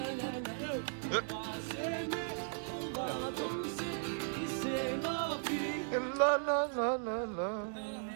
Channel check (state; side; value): silent; left; digital silence